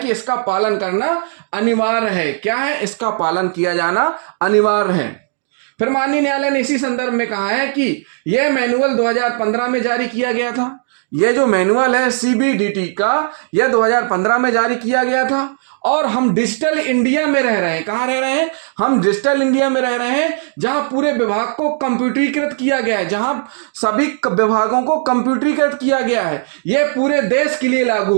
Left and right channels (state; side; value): silent; left; 68 dB below the other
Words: इसका पालन करना अनिवार्य है। क्या है? इसका पालन किया जाना अनिवार्य है। फिर माननीय न्यायालय ने इसी संदर्भ में कहा है कि यह मैनुअल 2015 में जारी किया गया था। यह जो मैनुअल है CBDT का, यह 2015 में जारी किया गया था और हम डिजिटल इंडिया में रह रहे हैं। कहां रह रहे हैं? हम डिजिटल इंडिया में रह रहे हैं जहां पूरे विभाग को कंप्यूटरीकृत किया गया है, जहां सभी विभागों को कंप्यूटरीकृत किया गया है। यह पूरे देश के लिए लागू